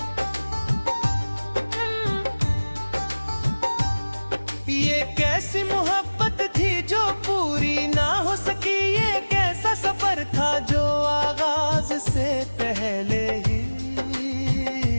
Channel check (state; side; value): inverted; both; correlation -1.00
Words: ये कैसी मोहब्बत थी जो पूरी ना हो सकी, ये कैसा सफर था जो आगाज से पहले ही